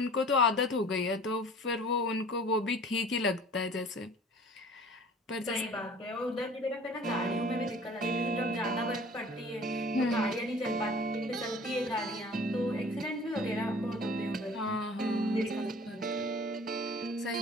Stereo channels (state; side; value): normal; both; correlation 0.47